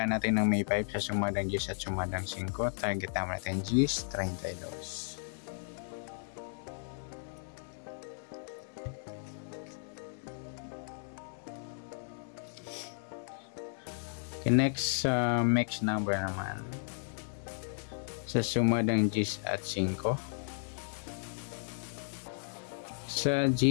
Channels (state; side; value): silent; right; digital silence